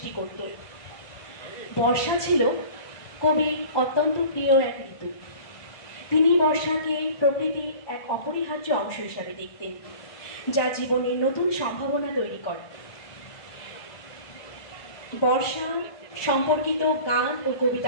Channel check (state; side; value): late; right; 1.2 ms